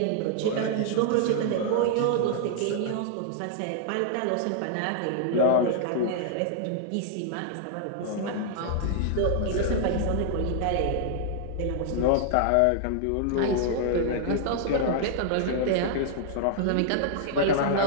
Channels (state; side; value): different; both; correlation -0.01